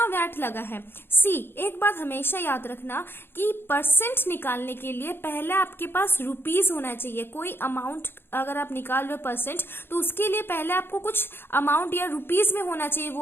वैट लगा है? सी, एक बात हमेशा याद रखना कि परसेंट निकालने के लिए पहले आपके पास रुपीज होना चाहिए। कोई अमाउंट अगर आप निकाल रहे हो परसेंट, तो उसके लिए पहले आपको कुछ अमाउंट या रुपीज में होना चाहिए वो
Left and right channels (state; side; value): late; right; 0.11 ms